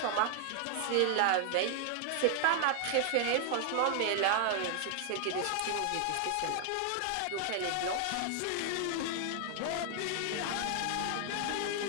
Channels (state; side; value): different; both; correlation 0.00